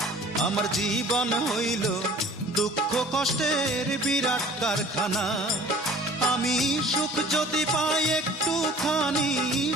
আমার জীবন হইল দুঃখ কষ্টের বিরাট কারখানা। আমি সুখ যদি পাই একটুখানি,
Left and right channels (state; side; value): normal; both; correlation 0.49